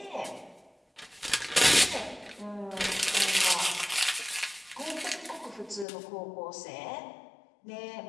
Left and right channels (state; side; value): drops out; right; at 5.9 s